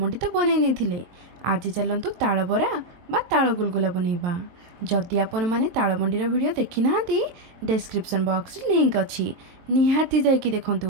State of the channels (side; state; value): left; late; 23 ms